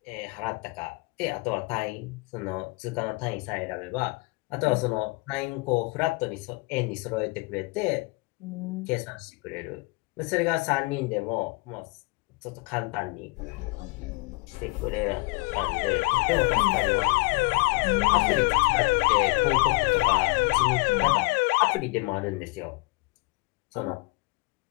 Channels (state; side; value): quieter; right; 25.4 dB